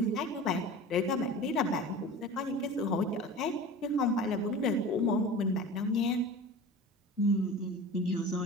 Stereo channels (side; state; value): both; normal; correlation 0.36